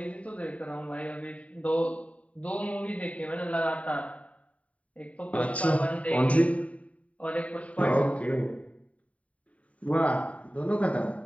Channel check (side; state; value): right; late; 0.067 ms